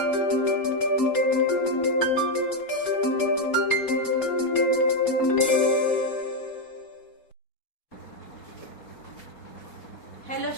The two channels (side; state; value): right; late; 4.3 ms